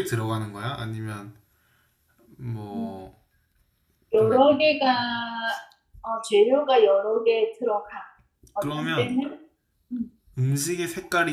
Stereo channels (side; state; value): both; identical; correlation 1.00